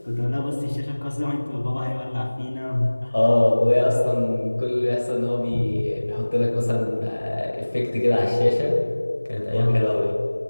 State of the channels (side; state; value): both; inverted; correlation -1.00